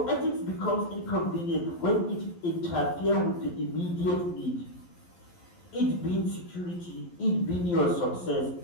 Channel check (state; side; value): late; right; 11 ms